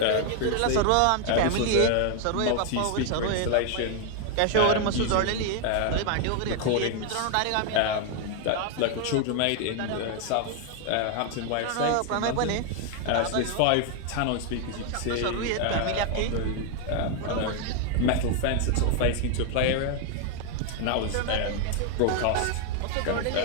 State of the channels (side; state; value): both; different; correlation 0.01